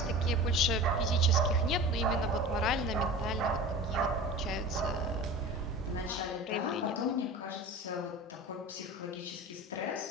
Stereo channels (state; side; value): normal; both; correlation 0.35